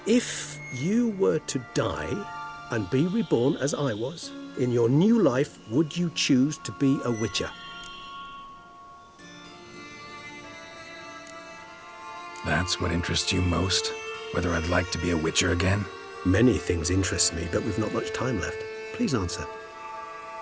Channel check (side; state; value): both; identical; correlation 1.00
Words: If you were to die and be reborn as I was, in your new life, would you choose to be a witcher? That's what interests you most? Whether I'd like to be a witcher again? Many things interest me, but we've not much time left. Please answer.